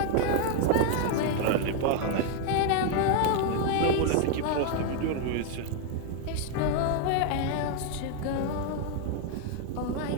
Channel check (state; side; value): different; both; correlation 0.00